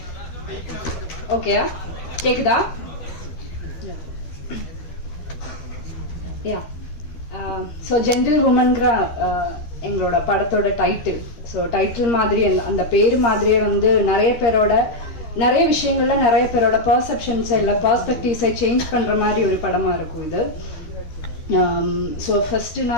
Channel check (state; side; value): late; right; 13 ms